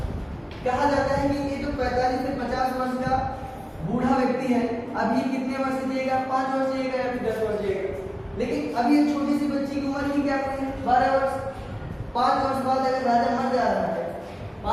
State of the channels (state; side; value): identical; both; correlation 1.00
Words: कहा जाता है कि ये जो 45 से 50 वर्ष का बूढ़ा व्यक्ति है अभी कितने वर्ष जिएगा? 5 वर्ष जिएगा या फिर 10 वर्ष जिएगा। लेकिन अभी ये छोटी सी बच्ची की उम्र ही क्या हुई है? 12 वर्ष। 5 वर्ष बाद अगर राजा मर जा रहा है,